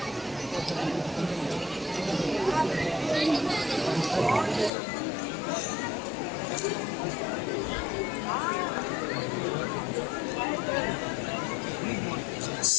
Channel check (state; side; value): drops out; right; at 4.7 s